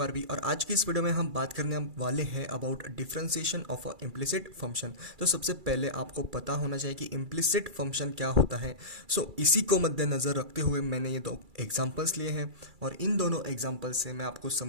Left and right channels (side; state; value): left; late; 2.3 ms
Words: और आज की इस वीडियो में हम बात करने वाले हैं about differentiation of a implicit function. तो सबसे पहले आपको पता होना चाहिए कि इम्प्लिसिट फंक्शन क्या होता है। इसी को मद्देनज़र रखते हुए मैंने ये दो एग्जांपल्स लिए हैं और इन दोनों एग्जांपल से मैं आपको